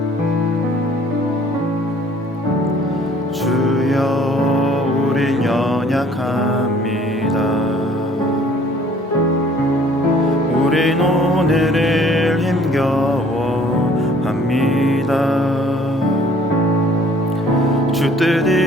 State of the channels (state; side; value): normal; both; correlation 0.56